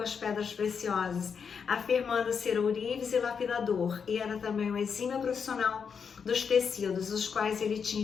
as pedras preciosas, afirmando ser ourives e lapidador, e era também um exímio profissional dos tecidos, os quais ele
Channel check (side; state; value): right; quieter; 6.4 dB